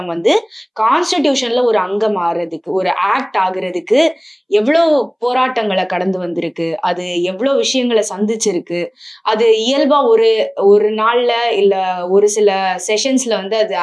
வந்து கான்ஸ்டிடியூஷன்ல ஒரு அங்கம் ஆகிறதுக்கு, ஒரு ஆக்ட் ஆகுறதுக்கு எவ்வளவு போராட்டங்களை கடந்து வந்திருக்கு, அது எவ்வளவு விஷயங்களை சந்திச்சிருக்கு. அது இயல்பா ஒரு நாள்ல இல்ல ஒரு சில செஷன்ஸ்ல வந்து அது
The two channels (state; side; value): identical; both; correlation 1.00